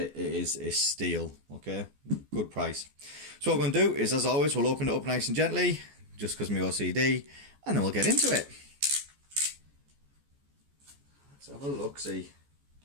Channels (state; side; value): late; left; 14 ms